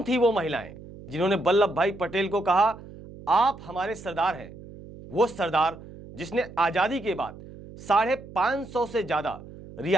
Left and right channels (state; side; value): noise; right; hum, 17 dB below the sound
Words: थी वो महिलाएं जिन्होंने वल्लभ भाई पटेल को कहा आप हमारे सरदार हैं? वो सरदार जिसने आजादी के बाद 550 से ज्यादा